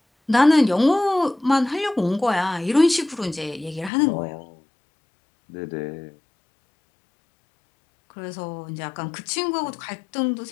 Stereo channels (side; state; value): right; drops out; at 3.9 s